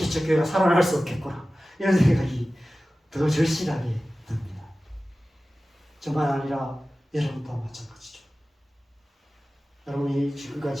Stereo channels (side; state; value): both; normal; correlation 0.96